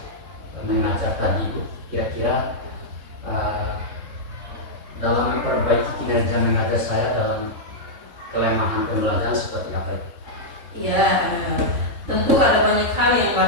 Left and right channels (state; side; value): late; left; 3.7 ms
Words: mengajar tadi, Bu, kira-kira dalam memperbaiki kinerja mengajar saya dalam kelemahan pembelajaran seperti apa? Ya, tentu ada banyak hal yang